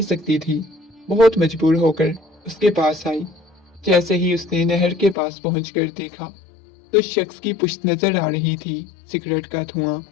सकती थी। बहुत मजबूर होकर उसके पास आई। जैसे ही उसने नहर के पास पहुंचकर देखा तो शख्स की पुश्त नजर आ रही थी। सिगरेट का धुआं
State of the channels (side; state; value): right; drops out; at 5.2 s